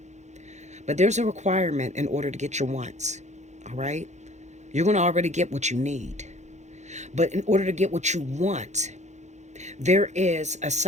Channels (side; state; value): left; late; 0.33 ms